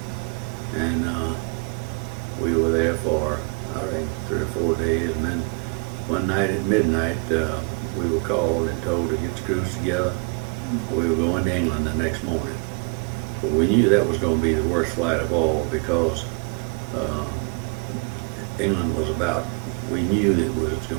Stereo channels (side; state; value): left; quieter; 34.5 dB